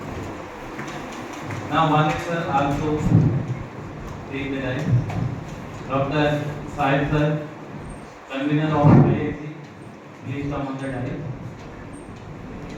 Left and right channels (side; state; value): both; identical; correlation 1.00